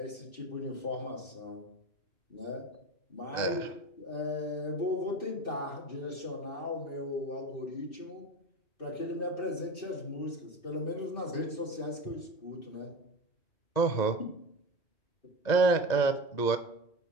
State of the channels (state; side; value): late; right; 1.9 ms